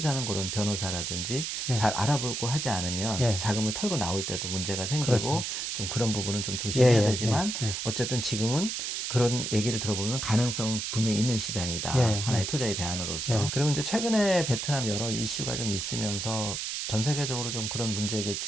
그런 변호사라든지 예. 잘 알아보고 하지 않으면 예. 자금을 털고 나올 때도 문제가 생기고 그렇죠. 좀 그런 부분은 좀 조심해야 예, 예, 되지만 예, 예. 어쨌든 지금은 그런 얘기를 들어보면 가능성 분명히 있는 시장이다. 예, 하나의 예. 투자의 대안으로서. 예. 그리고 이제 최근에 베트남 여러 이슈가 좀 있으면서 전 세계적으로 좀 그런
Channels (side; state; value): right; noise; hiss, 3 dB below the sound